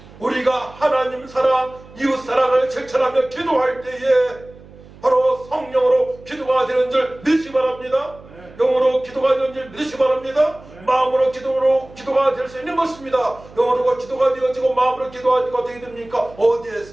우리가 하나님 사랑, 이웃 사랑을 실천하며 기도할 때에 바로 성령으로 기도가 되는 줄 믿으시기 바랍니다. 영으로 기도가 되는 줄 믿으시기 바랍니다. 마음으로 기도가 될 수 있는 것입니다. 영으로 기도가 되어지고 마음으로 기도가 되게 됩니까?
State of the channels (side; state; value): right; noise; hum, 21 dB below the sound